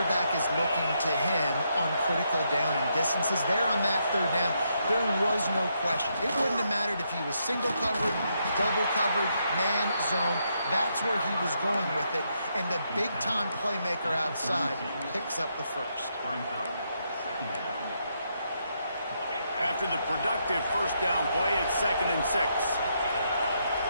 is looking to him on critical down and distances. There on that 3rd down, there was no question. It wouldn't have mattered if he was single covered, double covered, man, zone. That's where he was going with it, and the big-time playmaker outside picks up the 1st. After the productive 1st down play, it's 2nd and 6.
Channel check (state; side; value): inverted; both; correlation -0.78